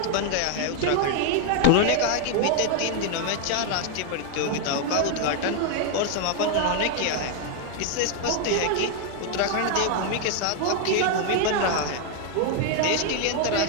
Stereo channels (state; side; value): different; both; correlation 0.00